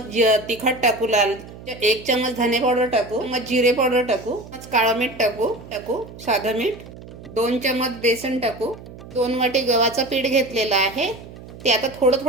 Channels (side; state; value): right; noise; hum, 16 dB below the sound